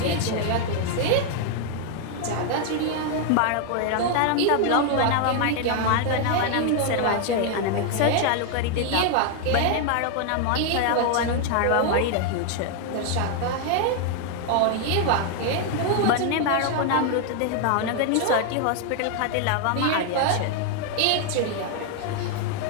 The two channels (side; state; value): both; different; correlation 0.00